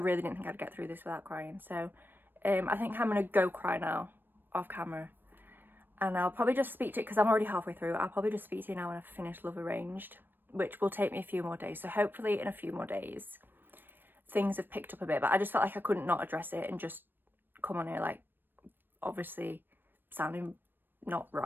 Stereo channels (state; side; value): late; left; 0.095 ms